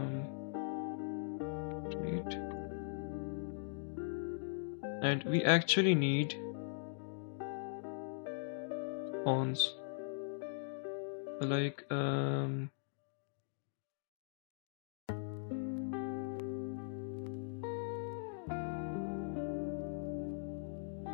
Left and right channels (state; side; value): silent; right; digital silence